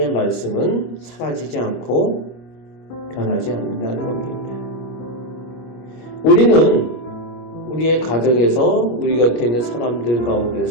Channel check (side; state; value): right; late; 25 ms